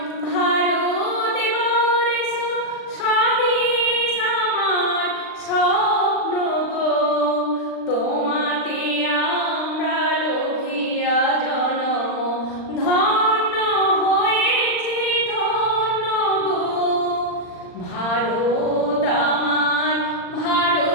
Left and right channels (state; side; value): late; right; 39 ms